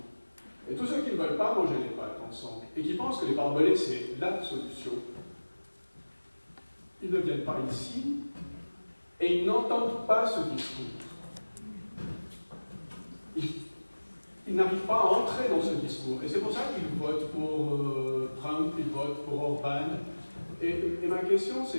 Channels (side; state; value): both; inverted; correlation -1.00